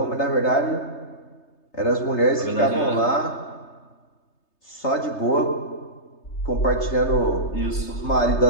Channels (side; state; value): right; late; 3.3 ms